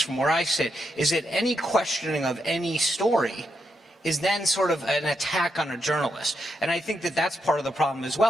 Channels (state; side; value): normal; both; correlation 0.82